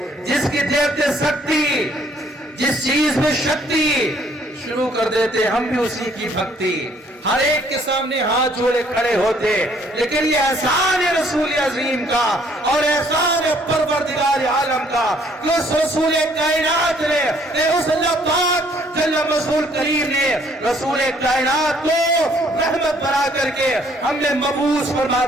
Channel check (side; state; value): both; normal; correlation 0.63